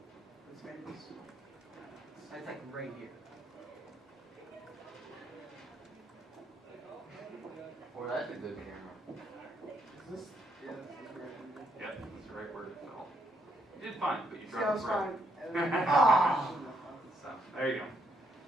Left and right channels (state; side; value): normal; both; correlation 0.75